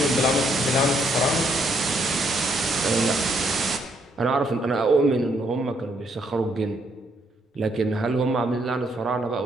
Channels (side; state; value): both; normal; correlation 0.72